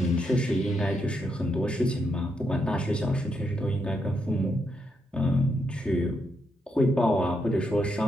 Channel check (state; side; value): normal; both; correlation 0.80